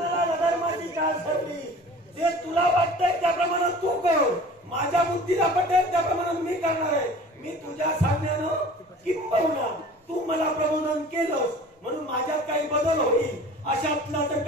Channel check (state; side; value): normal; both; correlation 0.44